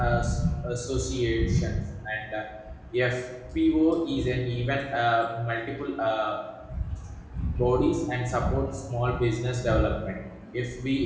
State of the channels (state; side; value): identical; both; correlation 1.00